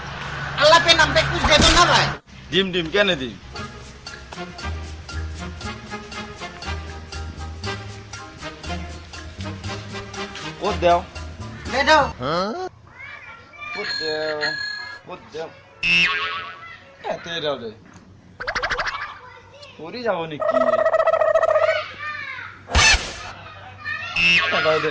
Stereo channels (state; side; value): identical; both; correlation 1.00